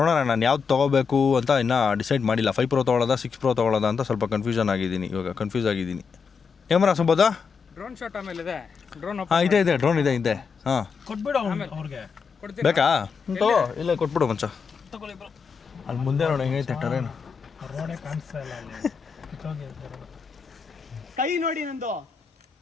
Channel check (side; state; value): right; quieter; 5.7 dB